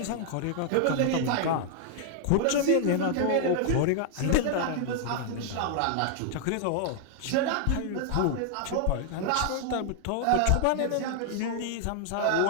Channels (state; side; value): different; both; correlation 0.00